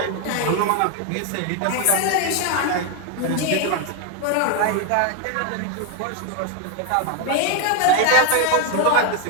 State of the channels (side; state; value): both; different; correlation 0.01